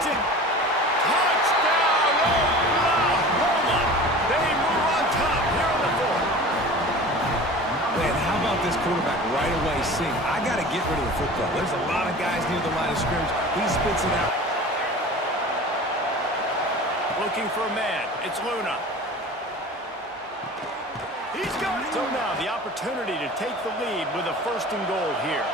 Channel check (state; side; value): normal; both; correlation 0.38